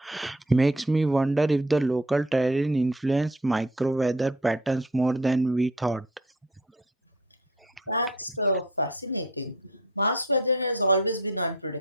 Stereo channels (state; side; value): normal; both; correlation 0.47